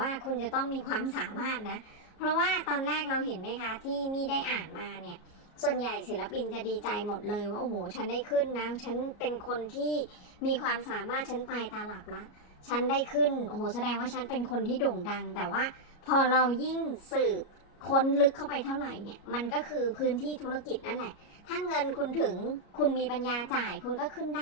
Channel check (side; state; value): right; late; 33 ms